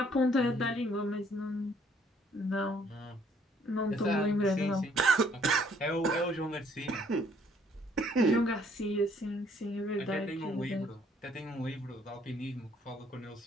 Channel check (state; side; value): normal; both; correlation 0.63